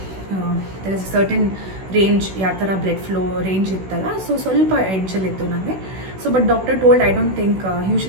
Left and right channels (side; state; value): left; late; 16 ms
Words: ದರ್ ಇಸ್ ಸರ್ಟನ್ ರೇಂಜ್, ಯಾವ ಥರ ಬ್ಲಡ್ ಫ್ಲೋ ರೇಂಜ್ ಇತ್ತಲ್ಲ, ಸೊ ಸ್ವಲ್ಪ ಎಡ್ಜಲ್ಲಿತ್ತು ನನಗೆ. So but doctor told, I don't think